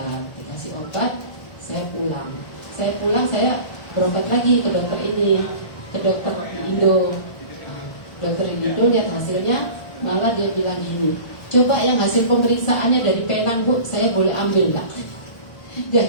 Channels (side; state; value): right; late; 1.4 ms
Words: saya pulang saya berobat lagi ke dokter ini, ke dokter Indo. Nah, dokter Indo lihat hasilnya, malah dia bilang gini, coba yang hasil pemeriksaannya dari Penang Bu, saya boleh ambil enggak?